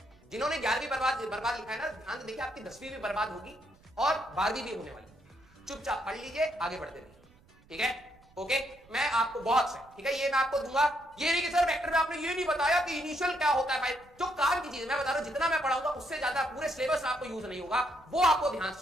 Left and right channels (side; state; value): right; noise; rumble, 29 dB below the sound